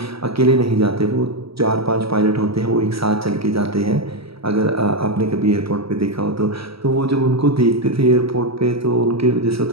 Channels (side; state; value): left; late; 0.76 ms